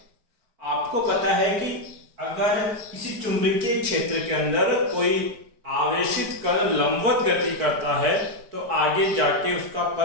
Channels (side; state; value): left; late; 4.6 ms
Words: आपको पता है कि अगर किसी चुंबकीय क्षेत्र के अंदर कोई आवेशित कण लंबवत गति करता है तो आगे जाके उसका